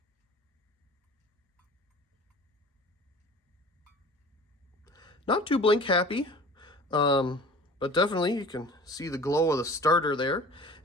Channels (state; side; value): normal; both; correlation 0.43